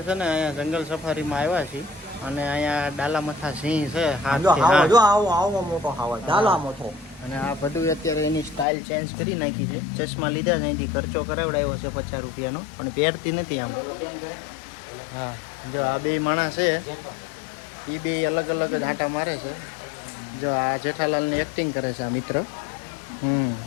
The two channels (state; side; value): drops out; right; at 8.7 s